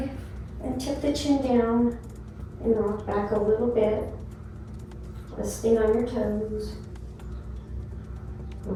and tip the chin down and rock back a little bit. Resting on your toes.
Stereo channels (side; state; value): both; identical; correlation 1.00